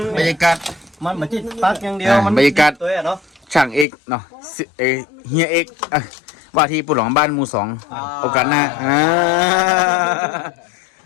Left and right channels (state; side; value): drops out; right; at 3.9 s